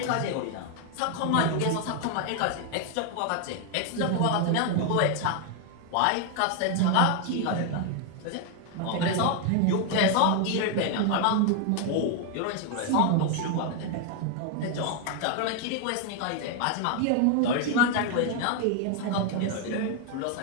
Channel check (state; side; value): different; both; correlation 0.01